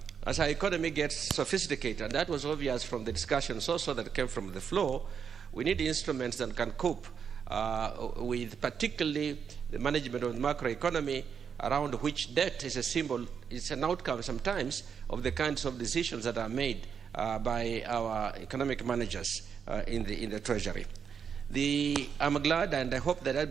as our economy gets sophisticated, and that was obvious from the discussions also that came from the floor, we need instruments that can cope with particularly the management of the macroeconomy, around which debt is a symbol, it's an outcome sometimes of the kinds of decisions that are made by our economic managers in the Treasury. I'm glad, and I hope that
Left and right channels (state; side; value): quieter; left; 7.0 dB